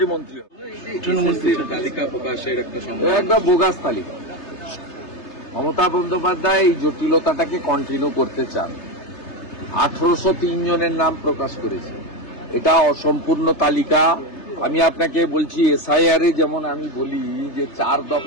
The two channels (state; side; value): late; right; 3.3 ms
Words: মন্ত্রী তালিকা প্রকাশের একটা একদম বোগাস তালিকা। মমতা বন্দ্যোপাধ্যায় এই জটিলতাটাকে কন্টিনিউ করতে চান। 1803 জনের নাম প্রকাশ করেছে, এটা অসম্পূর্ণ তালিকা। আমি আপনাকে বলছি, এসআইআর এ যেমন আমি বলি যে 4